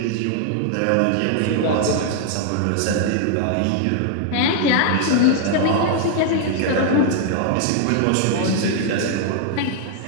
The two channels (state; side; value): different; both; correlation 0.00